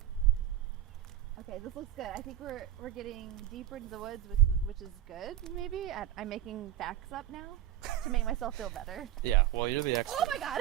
Okay, this looks good. I think we're getting deeper into the woods, which is good. Maybe I'm making facts up now to make myself feel better. Yeah, well, you're the expert. Oh my god!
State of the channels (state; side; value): quieter; left; 11.7 dB